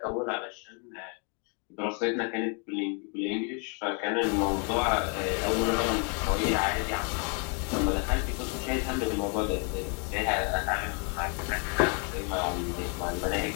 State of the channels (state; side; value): quieter; right; 37.7 dB